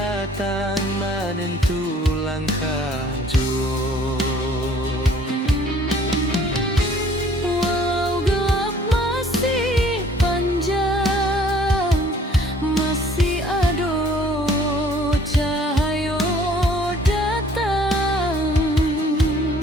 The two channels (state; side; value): normal; both; correlation 0.56